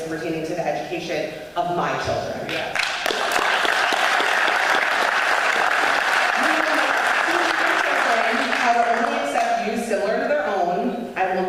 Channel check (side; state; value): both; identical; correlation 1.00